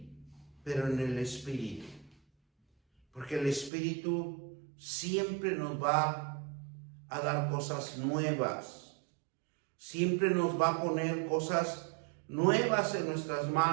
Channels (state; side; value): drops out; left; at 3.7 s